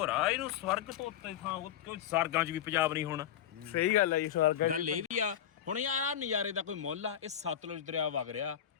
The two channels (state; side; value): quieter; right; 10.1 dB